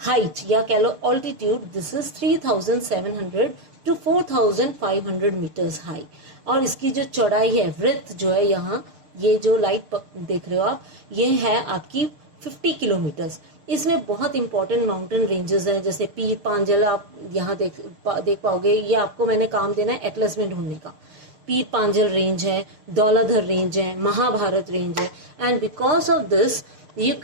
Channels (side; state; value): left; late; 6.5 ms